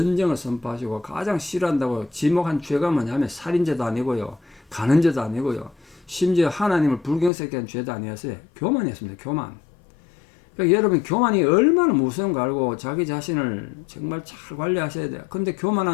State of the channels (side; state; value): right; drops out; at 7.3 s